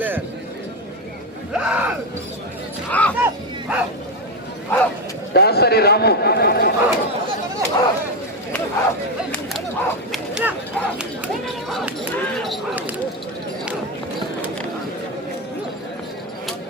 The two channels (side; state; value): both; normal; correlation 0.09